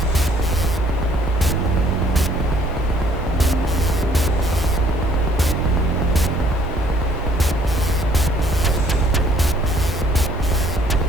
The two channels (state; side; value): normal; both; correlation 0.61